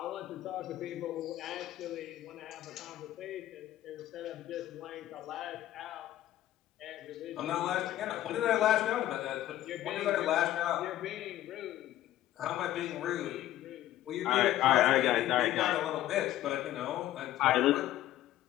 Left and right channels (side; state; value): right; quieter; 13.6 dB